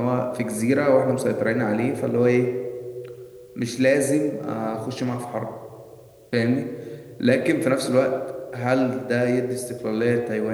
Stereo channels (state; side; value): identical; both; correlation 1.00